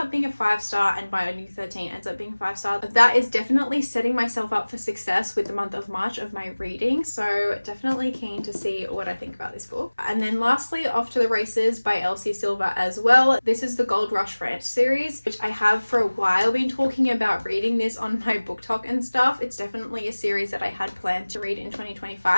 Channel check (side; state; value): both; inverted; correlation -1.00